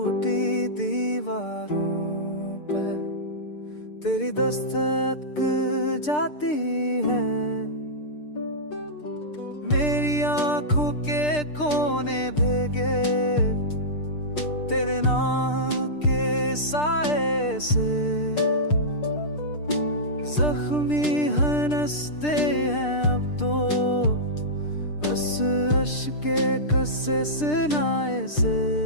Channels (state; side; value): late; right; 6.7 ms